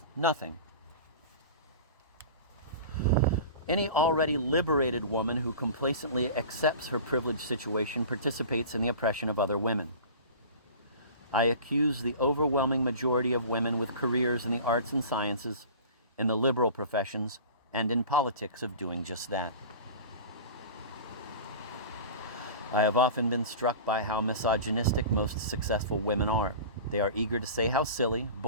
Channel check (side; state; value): both; inverted; correlation -0.37